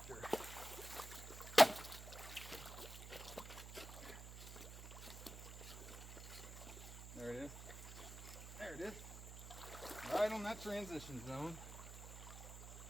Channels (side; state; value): right; noise; hum, 10 dB below the sound